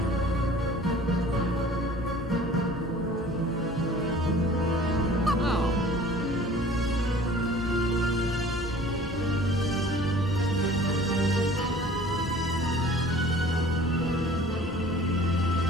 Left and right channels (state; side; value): normal; both; correlation 0.48